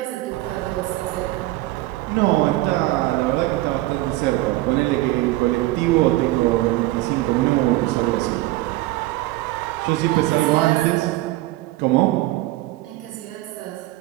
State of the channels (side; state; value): left; quieter; 17.8 dB